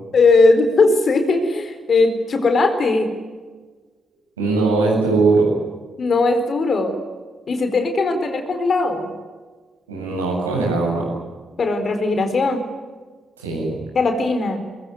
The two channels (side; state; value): both; normal; correlation 0.79